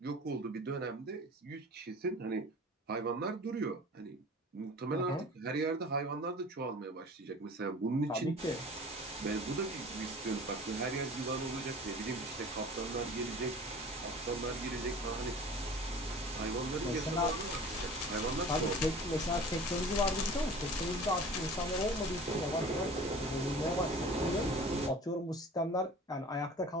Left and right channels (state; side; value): normal; both; correlation 0.42